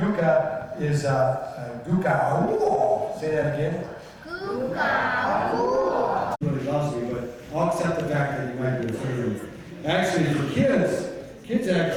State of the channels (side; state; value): both; identical; correlation 1.00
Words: is Guka. Ooh. Say that again. Guka. Really loves me, but I'll accept the fact that you might be afraid of me. Actually, for